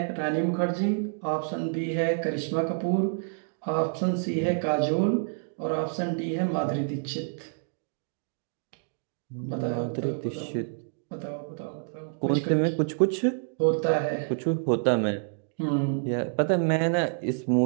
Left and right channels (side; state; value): left; silent; digital silence